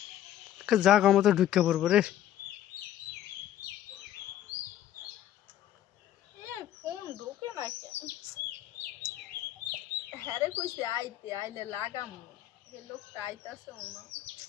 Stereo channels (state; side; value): quieter; right; 12.0 dB